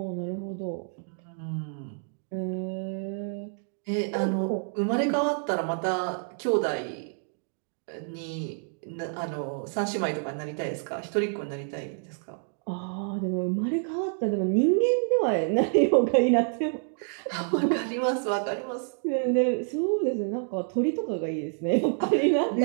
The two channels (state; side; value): silent; left; 59 dB below the other